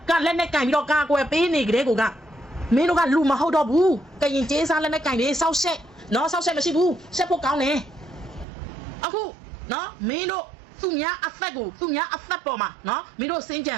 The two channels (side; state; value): left; drops out; at 8.5 s